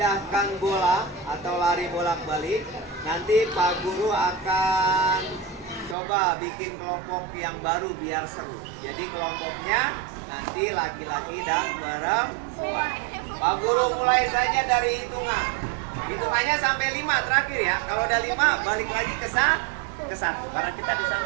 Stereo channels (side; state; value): left; drops out; at 6.0 s